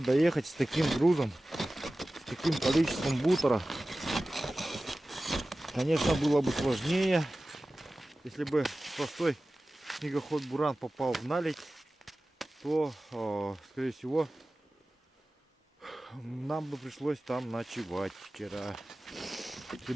с таким грузом, с таким количеством бутера, конечно, было бы сложнее. Если бы простой снегоход буран попал в наледь, то, скорее всего, нам бы пришлось там ночевать вчера. Если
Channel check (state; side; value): normal; both; correlation 0.96